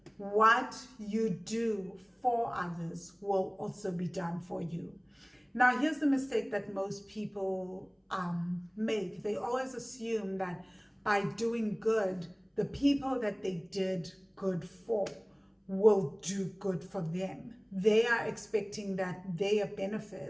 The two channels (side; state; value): both; identical; correlation 1.00